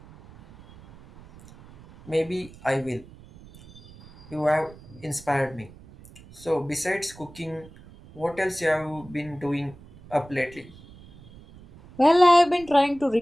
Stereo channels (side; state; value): right; noise; rumble, 21 dB below the sound